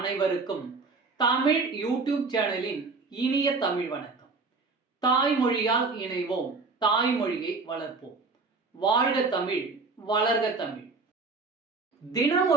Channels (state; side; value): quieter; left; 4.1 dB